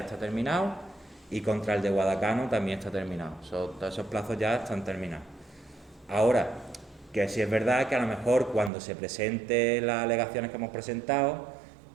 terminado y contra el de Guadacano también está terminado. Todos esos plazos ya están terminados. Ahora, que si es verdad que a lo mejor cuando se presenten las alegaciones que hemos presentado,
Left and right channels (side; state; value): left; drops out; at 8.7 s